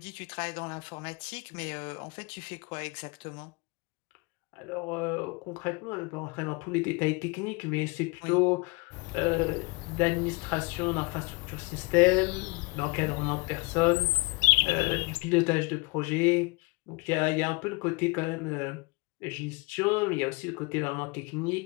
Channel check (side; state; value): right; quieter; 26.7 dB